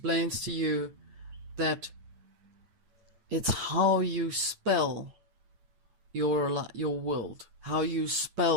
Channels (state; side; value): late; left; 9.1 ms